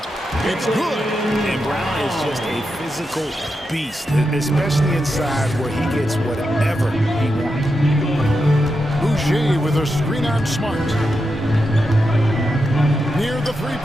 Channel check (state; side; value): normal; both; correlation 0.87